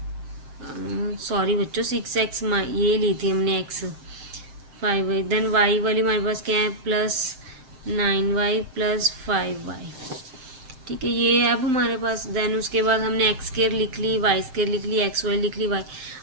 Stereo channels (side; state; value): left; late; 7.6 ms